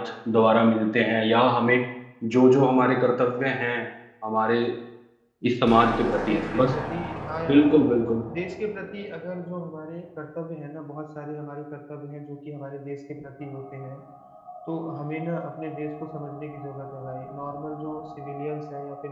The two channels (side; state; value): both; identical; correlation 1.00